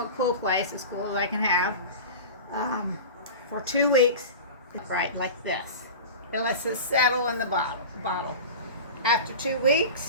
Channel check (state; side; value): inverted; both; correlation -0.31